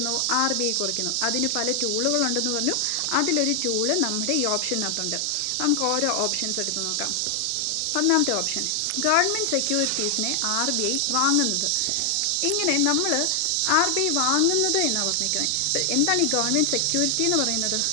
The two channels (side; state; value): both; different; correlation 0.00